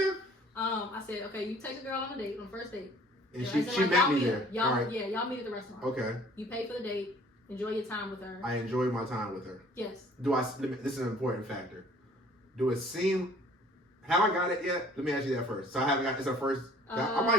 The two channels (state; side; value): normal; both; correlation 0.54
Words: I said, okay, you take a girl on a date, on the first date. And she met me there. Y'all meet at the restaurant. Okay. You pay for the date. Enjoy your time with her. I enjoyed my time with her. Yes. This is an important factor. Do it seem? Have I got it yet? Let me ask you that first. So I haven't got. It's our first. I